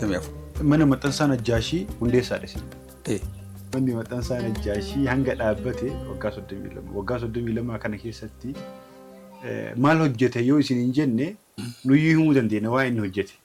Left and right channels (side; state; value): both; identical; correlation 1.00